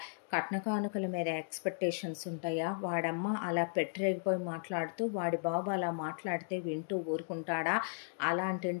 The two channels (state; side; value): silent; right; digital silence